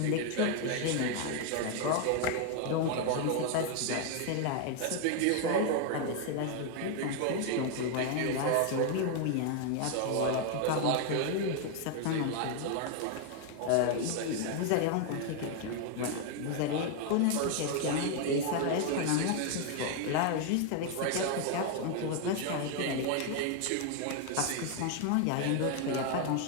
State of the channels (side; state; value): both; different; correlation 0.00